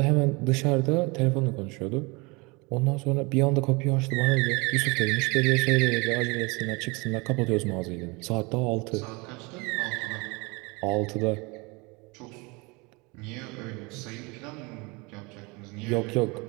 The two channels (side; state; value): left; quieter; 27.2 dB